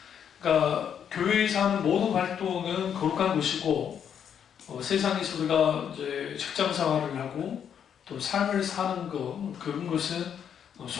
그러니까 교회에서 하는 모든 활동은 거룩한 것이고 세상에서 우리가 이제 직장 생활을 하고 또 삶을 사는 것 그런 것은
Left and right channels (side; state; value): right; quieter; 8.3 dB